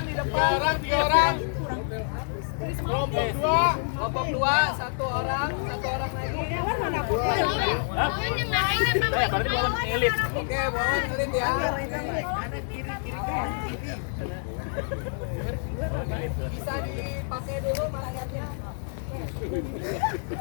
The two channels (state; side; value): silent; right; 58 dB below the other